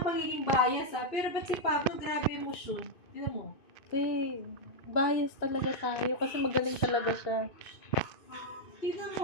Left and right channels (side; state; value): right; late; 2.5 ms